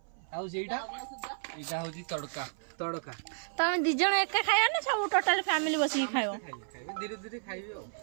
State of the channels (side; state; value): left; silent; 56 dB below the other